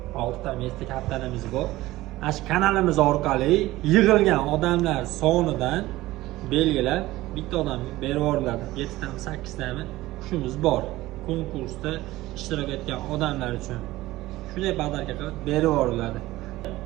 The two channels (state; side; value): quieter; left; 17.5 dB